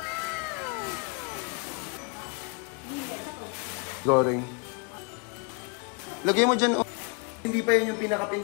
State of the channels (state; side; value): quieter; right; 34.9 dB